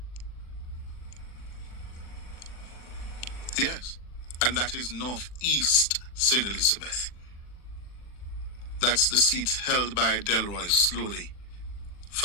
Yes, and that is Northeast St. Elizabeth. That's the seat held by Delroy Slowly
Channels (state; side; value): late; right; 40 ms